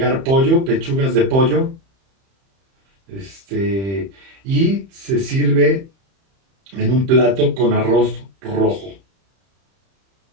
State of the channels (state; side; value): late; left; 31 ms